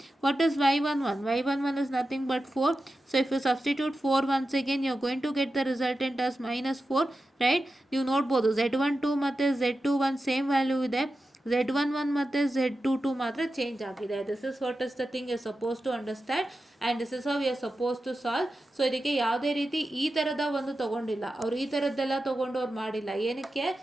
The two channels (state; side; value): normal; both; correlation 0.92